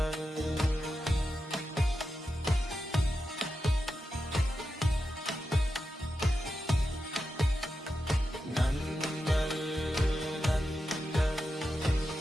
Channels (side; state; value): both; normal; correlation 0.89